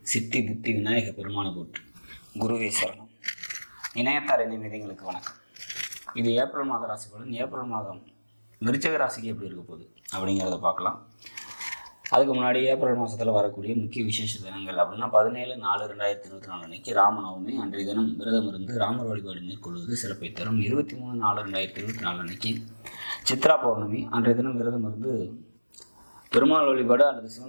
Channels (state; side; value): inverted; both; correlation -1.00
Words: சித்தி புத்தி விநாயக பெருமானை போற்றி, குருவே சரணம். இணையத்தார் இணையங்களுக்கு வணக்கம். இது ஏப்ரல் மாத ராசி பலன். ஏப்ரல் மாதம் விருச்சிக ராசிக்கு எப்படி இருக்க போகுது அப்படிங்கிறத பார்க்கலாம். அதுக்கு முன்னாடி ஏப்ரல் மாதத்தில் வரக்கூடிய முக்கிய விசேஷ தினங்கள் அப்படின்னா 17/4/2024 அன்னைக்கு ராமநவமி. அன்றைய தினம் விரதம் இருந்து ராமர் வழிபாடு மேற்கொள்வது சிறப்பை தரும். 23/4/2024 அன்னைக்கு சித்ரா பௌர்ணமி. அன்றைய தினம் விரதம் இருந்து பெருமாள் வழிபாடு அல்லது